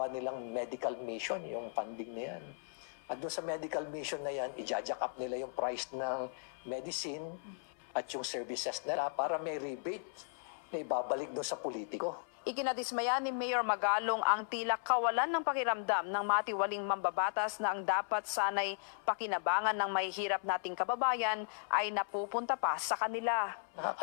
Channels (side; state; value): right; silent; 54 dB below the other